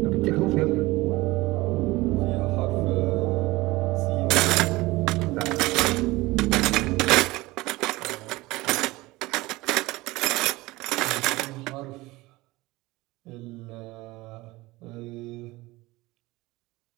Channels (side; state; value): left; quieter; 20.4 dB